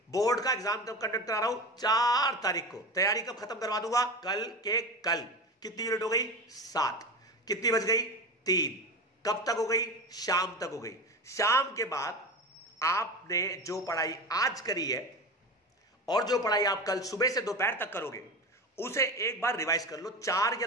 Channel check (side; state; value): both; normal; correlation 0.27